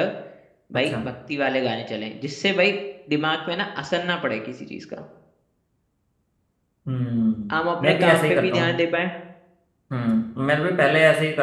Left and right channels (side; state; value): both; identical; correlation 1.00